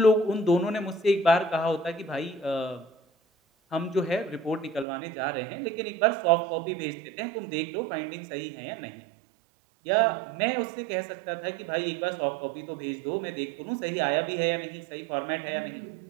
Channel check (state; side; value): drops out; left; at 4.9 s